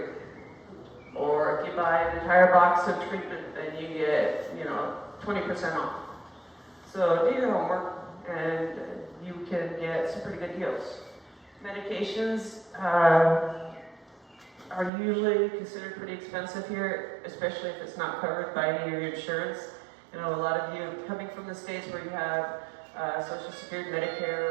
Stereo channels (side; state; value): left; drops out; at 14.9 s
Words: Or if you buy an entire box of treatment, then you get, you know, 20% off. So do your homework, and you can get some pretty good deals. Medications are usually considered pretty expensive here, especially if it's not covered by any of your insurance. You know, a lot of you coming from the States where you have Social Security,